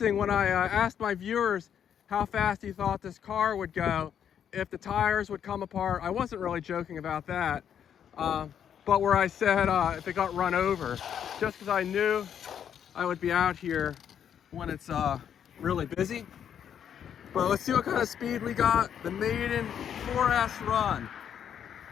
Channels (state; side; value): quieter; right; 8.8 dB